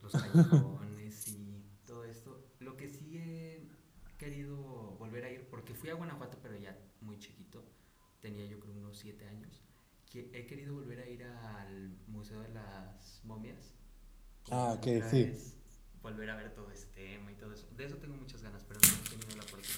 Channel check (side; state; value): both; identical; correlation 1.00